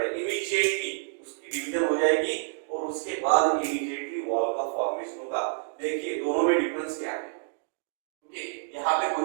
है, इमीडिएटली उसकी डिवीजन हो जाएगी और उसके बाद इमीडिएटली वॉल का फॉर्मेशन होगा। देखिए दोनों में डिफरेंस क्या है, ओके यहाँ पे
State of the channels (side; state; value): left; silent; digital silence